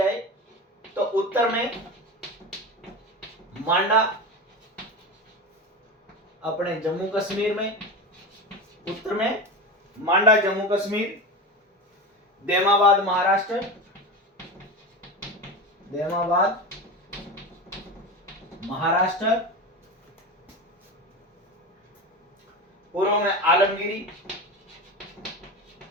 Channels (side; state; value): both; normal; correlation 0.24